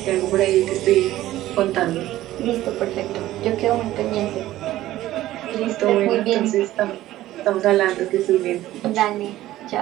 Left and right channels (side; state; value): left; quieter; 14.9 dB